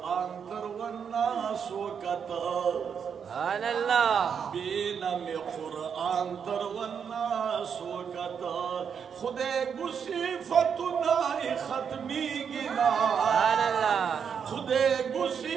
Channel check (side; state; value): left; quieter; 7.1 dB